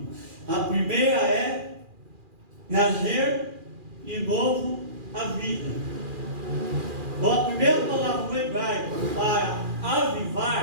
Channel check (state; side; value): late; left; 2.4 ms